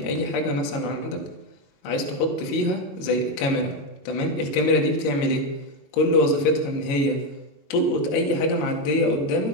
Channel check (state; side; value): late; right; 22 ms